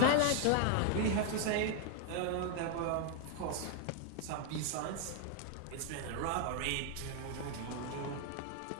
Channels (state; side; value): different; both; correlation 0.00